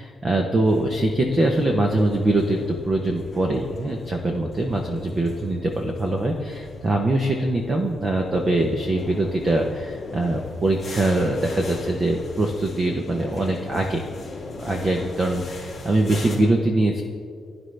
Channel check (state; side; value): normal; both; correlation 0.85